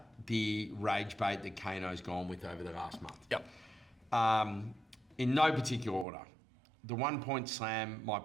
the rage bait that Kano's gone with over the last month. Yep. In no particular order. The 1 point slam might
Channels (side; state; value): left; drops out; at 6.1 s